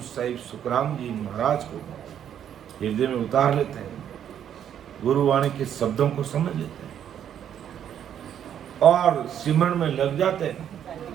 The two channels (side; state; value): left; quieter; 9.5 dB